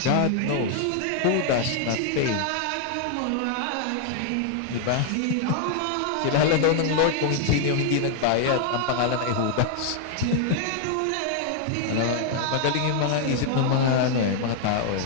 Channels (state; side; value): different; both; correlation 0.00